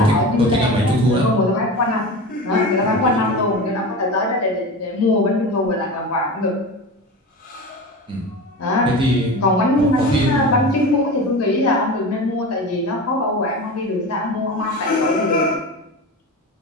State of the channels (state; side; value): normal; both; correlation 0.28